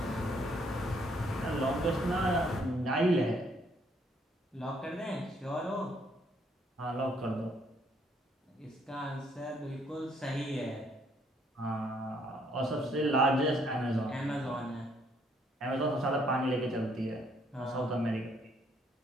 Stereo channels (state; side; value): normal; both; correlation 0.68